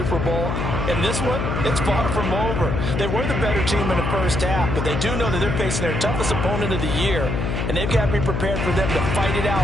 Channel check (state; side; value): noise; left; hum, 1 dB below the sound